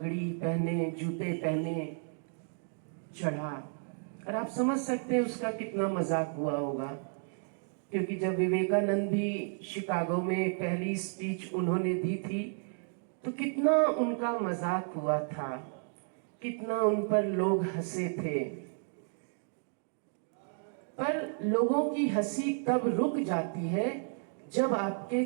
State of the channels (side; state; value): left; silent; 56 dB below the other